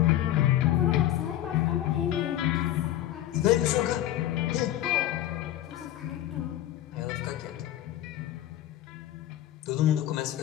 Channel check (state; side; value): quieter; right; 12.9 dB